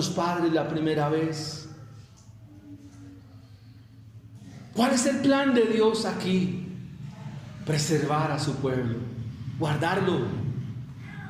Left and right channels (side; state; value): both; identical; correlation 1.00